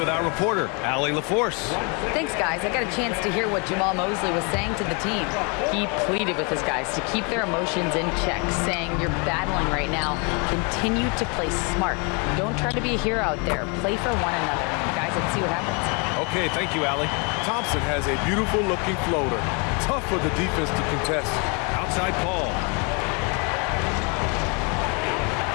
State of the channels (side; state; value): right; quieter; 33.5 dB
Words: our reporter, Allie LaForce. Thanks, guys. I got a chance to hear what Jamal Mosley was saying to the team. He pleaded with his guys to keep their emotions in check, saying, you're battling right now. Continue to play smart. Don't try to be a hero out there. Play for one another. Guys, let's see what happens. Okay, thank you, Allie. Thompson has a beautiful-looking floater. Tough for the defense to contest. Outside Paul.